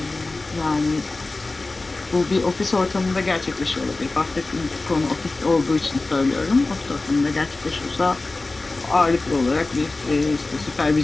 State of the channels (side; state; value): right; quieter; 3.3 dB